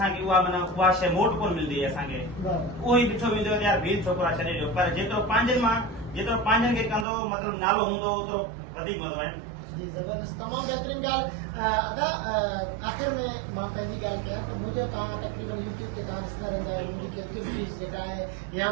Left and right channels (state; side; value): drops out; left; at 7.1 s